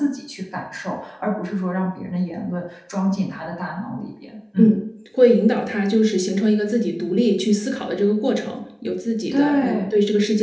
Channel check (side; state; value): both; identical; correlation 1.00